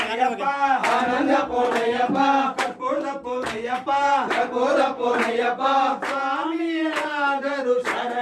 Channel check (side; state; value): both; identical; correlation 1.00